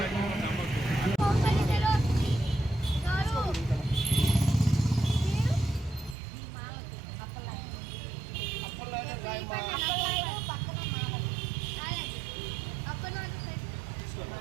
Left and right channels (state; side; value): drops out; left; at 6.2 s